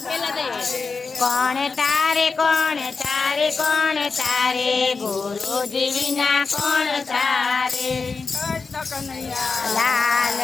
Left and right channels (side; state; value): right; quieter; 4.6 dB